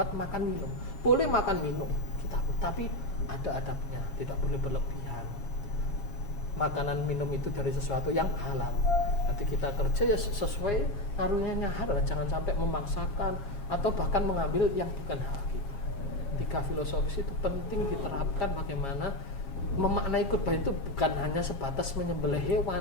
makan minum. Boleh makan minum kita, tapi ada adabnya, tidak boleh berlebihan. Makanan minum itu dari sesuatu yang halal. Nanti kita kerja ya sesuai karunia halal, jangan sampai memaksakan atau bahkan mengambil yang bukan hak kita. 3 filosofis itu penting diterapkan, bagaimana memaknai kurban itu bukan hanya sebatas menyembelih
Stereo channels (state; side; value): late; right; 7.3 ms